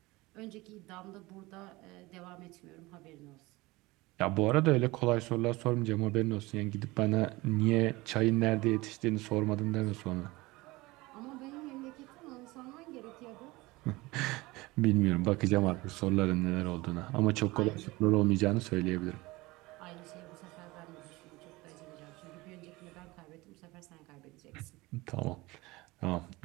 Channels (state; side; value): quieter; left; 21.5 dB